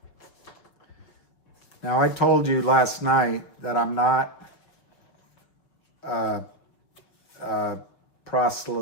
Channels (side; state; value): right; late; 6.0 ms